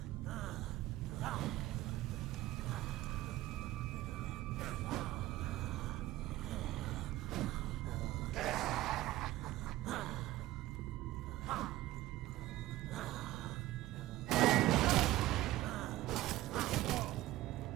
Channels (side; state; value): left; quieter; 16.1 dB